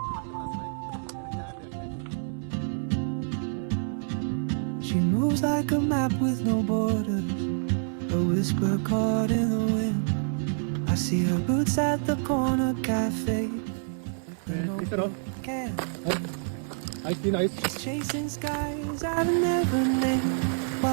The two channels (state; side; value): silent; left; 60 dB below the other